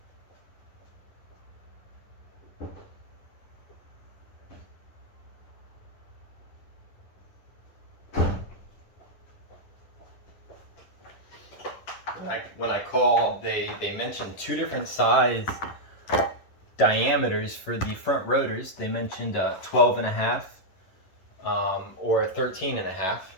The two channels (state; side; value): late; right; 11 ms